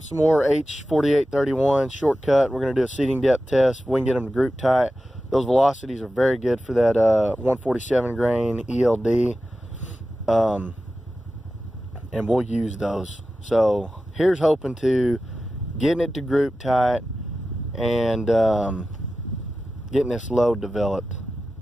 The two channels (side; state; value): both; normal; correlation 0.93